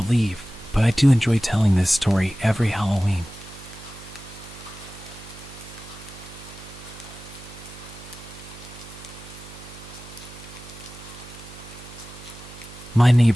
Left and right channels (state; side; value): noise; right; hum, 16 dB below the sound